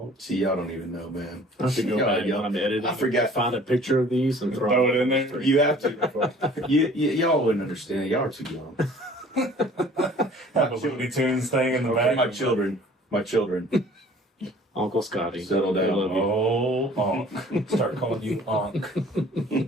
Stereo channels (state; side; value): normal; both; correlation 0.51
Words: See, y'all don't even know, man. I have to go Yeah, back yeah. when I'm editing. I forgot. Find a picture of these and Throw it in there. You have to. Y'all wouldn't understand. Y'all are too young. Have a Looney Tunes thing in the back. My children. Uncle Scotty. Settle down. I love you. Oh, Onk. Start calling you Onk.